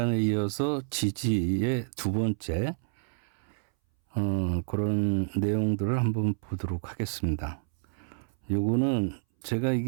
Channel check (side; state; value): left; silent; 59 dB below the other